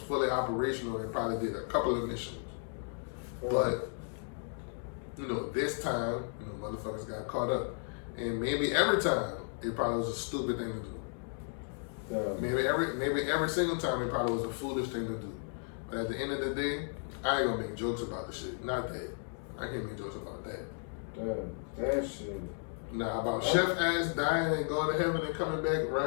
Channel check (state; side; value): silent; right; 55 dB below the other